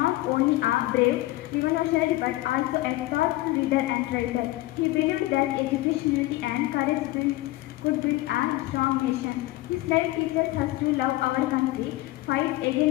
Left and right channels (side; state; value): right; quieter; 18.3 dB